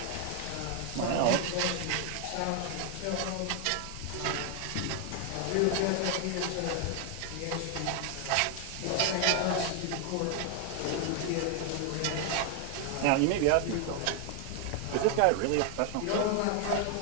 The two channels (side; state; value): both; different; correlation 0.01